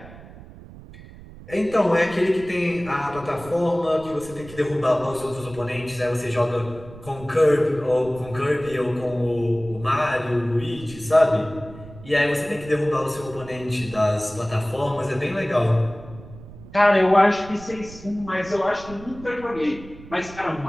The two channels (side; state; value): right; noise; rumble, 17 dB below the sound